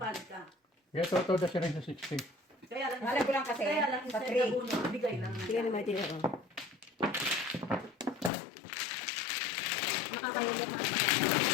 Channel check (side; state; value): right; drops out; at 8.3 s